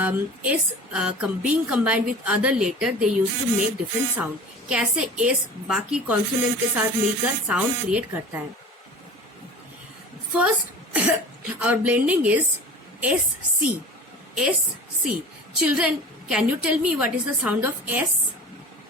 S being combined with other letter they used to make different sound. कैसे S बाकी consonant के साथ मिलकर sound create करता है. First, our blending is SC. SC. Children, can you tell me what is the sound of S?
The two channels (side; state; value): both; normal; correlation 0.39